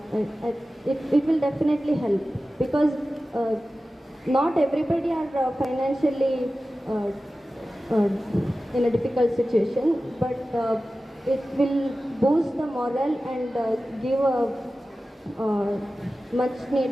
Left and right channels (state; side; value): normal; both; correlation 0.95